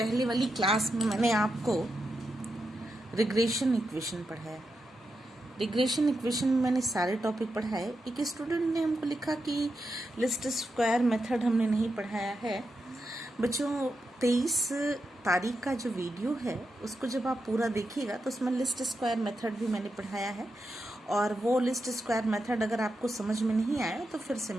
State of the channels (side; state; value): both; normal; correlation 0.86